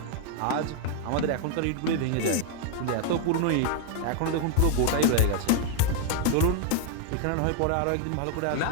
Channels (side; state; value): both; different; correlation 0.00